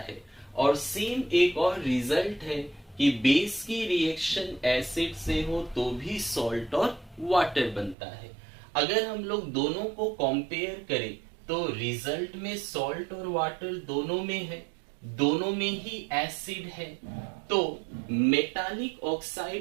है। और सेम एक और रिजल्ट है कि बेस की रिएक्शन एसिड से हो तो भी सॉल्ट और वाटर बनता है। अगर हम लोग दोनों को कंपेयर करें तो रिजल्ट में सॉल्ट और वाटर दोनों में है, दोनों में ही एसिड है। तो मेटालिक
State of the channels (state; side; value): drops out; left; at 8.0 s